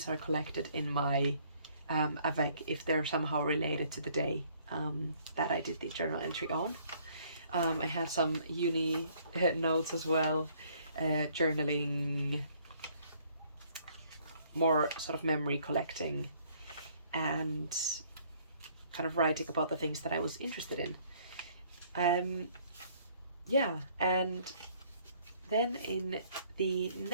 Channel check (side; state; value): both; inverted; correlation -0.62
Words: are collected in my avec if they're somehow related to the day that I did the journal entry on. I had some uni notes as well, journaling, more sort of memory collecting, and kind of writing about the things that I was interested in. Yeah, and then in the